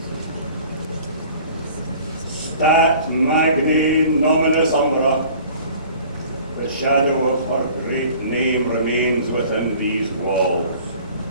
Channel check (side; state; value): both; inverted; correlation -0.48